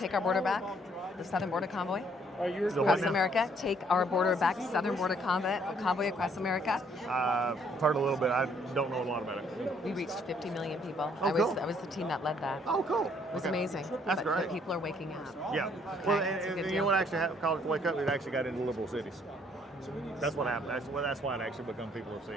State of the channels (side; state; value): both; normal; correlation 0.65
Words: Our Border Back? The Southern Border Convoy? Across America, Take Our Border Back, Southern Border Convoy across America. I've heard a little bit. I don't know a lot about it. We reached 50 million people. Oh, cool. I was the team that led that. Oh, cool. It was amazing. That's but great. People are waking up. Yeah. Okay, Well, that's a and good you deal. know what actually caused it to wake up? It actually got into liberal cities. That's what happened. That's why it actually become people are